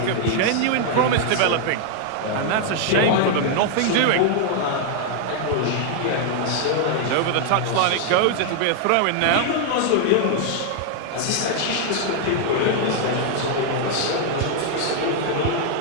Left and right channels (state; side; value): different; both; correlation 0.00